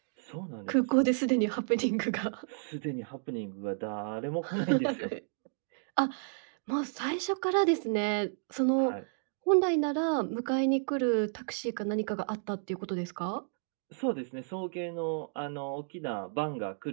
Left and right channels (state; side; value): silent; left; digital silence